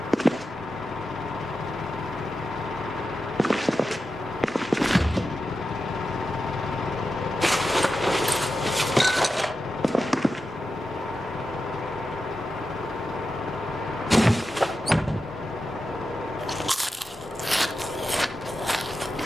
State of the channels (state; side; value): normal; both; correlation 0.91